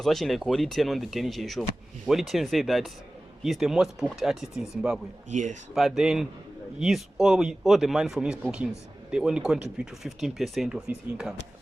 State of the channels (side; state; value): both; normal; correlation 0.97